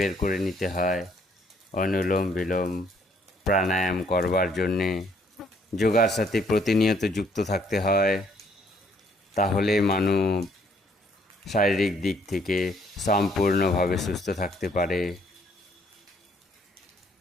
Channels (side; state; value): both; normal; correlation 0.66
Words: করে নিতে হয় অনুলোম বিলোম প্রাণায়াম করবার জন্যে। যোগার সাথে প্রতিনিয়ত যুক্ত থাকতে হয়, তাহলে মানুষ শারীরিক দিক থেকে সম্পূর্ণভাবে সুস্থ থাকতে পারে।